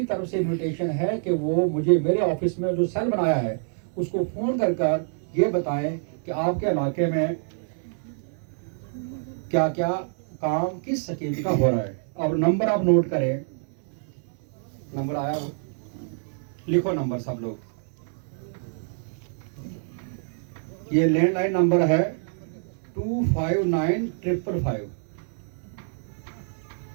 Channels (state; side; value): silent; left; digital silence